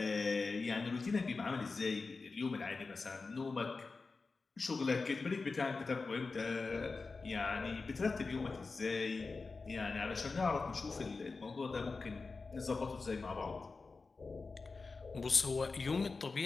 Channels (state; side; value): quieter; right; 4.1 dB